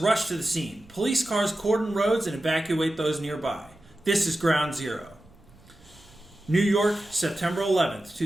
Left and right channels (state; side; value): noise; right; rumble, 27 dB below the sound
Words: to the scene. Police cars cordon roads and evacuate those nearby. This is Ground Zero. New York, September 11th,